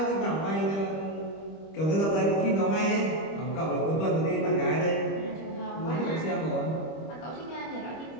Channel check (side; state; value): right; late; 25 ms